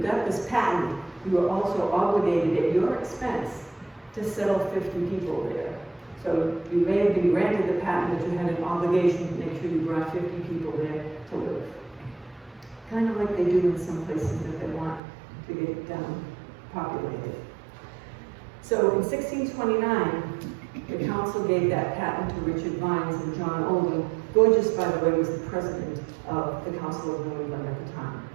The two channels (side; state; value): left; drops out; at 15.0 s